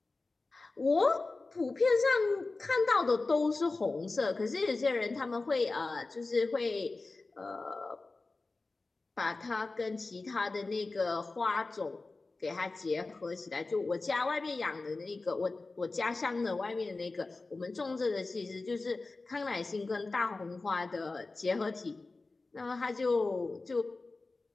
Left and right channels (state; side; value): quieter; right; 3.5 dB